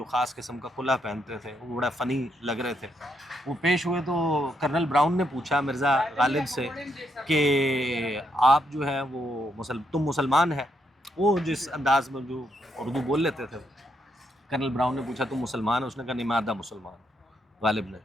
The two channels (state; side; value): normal; both; correlation 0.77